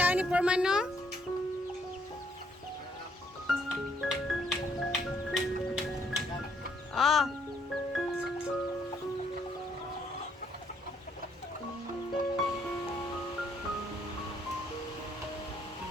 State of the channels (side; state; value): both; normal; correlation 0.69